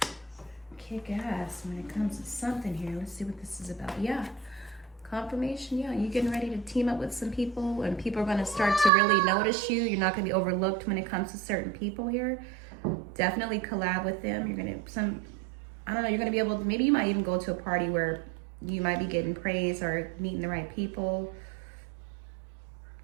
kick ass when it comes to something here. Let's see what this is about. Yeah. Confirmation, yeah. You getting ready to team up with some people, and people are going to start to really notice you. You're not going to be overlooked when it comes to certain people here. Definitely collab with them. You're going to, I don't know, you're going to be able to, maybe you might even go to a party where you might be getting praise or meeting the right people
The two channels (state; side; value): drops out; left; at 8.9 s